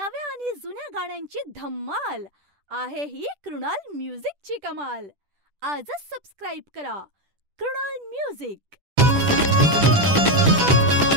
आणि जुन्या गाण्यांची धम्माल आहे ही कृणाल म्युझिकची कमाल. आजच सबस्क्राईब करा कृणाल म्युझिक.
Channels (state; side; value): late; left; 10 ms